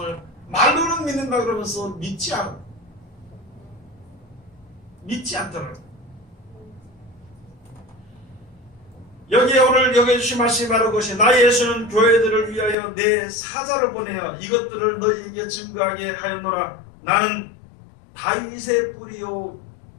말로는 믿는다 그러면서 믿지 않더라고요. 여기에 오늘 여기 주신 말씀이 바로 그것이, 나 예수는 교회들을 위하여 내 사자를 보내어 이것들을 너희에게 증거하게 하였노라. 나는 다윗의 뿌리요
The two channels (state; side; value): drops out; right; at 12.8 s